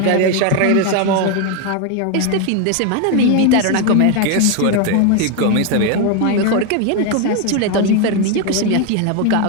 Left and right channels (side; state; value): both; different; correlation 0.01